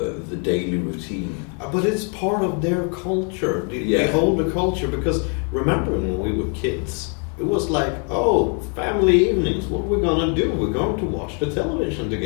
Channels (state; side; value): quieter; right; 39.9 dB